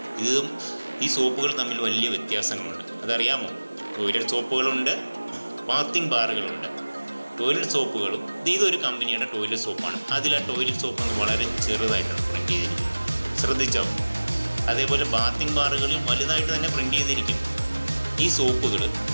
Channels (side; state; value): both; inverted; correlation -1.00